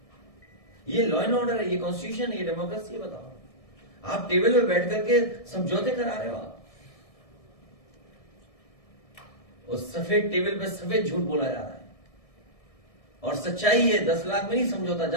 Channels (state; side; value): late; right; 1.6 ms